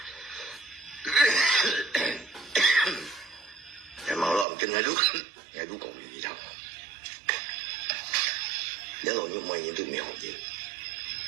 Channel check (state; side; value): drops out; left; at 4.5 s